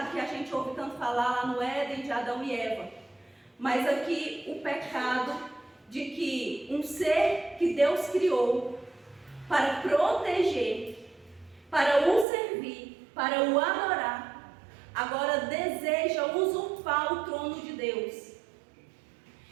que a gente ouve tanto falar lá no Éden de Adão e Eva. Mas aqui o pecado de que um ser que Deus criou para proteger, para o servir, para o adorar, agora deseja usurpar o trono de Deus.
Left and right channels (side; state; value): left; drops out; at 12.2 s